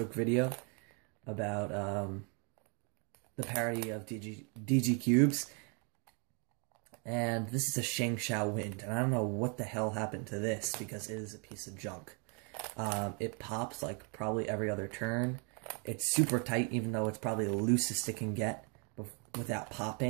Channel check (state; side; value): quieter; left; 36.4 dB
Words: video about the parody of DG Cubes. And this is a Shangshao Wind, and I don't know what the hell happened to this, because it is a piece of junk. It pops like probably every other turn. It's super tight, even though it's probably the loosest it can get without